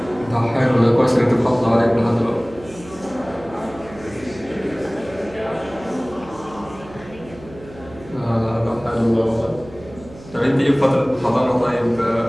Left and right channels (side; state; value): right; noise; hum, 19 dB below the sound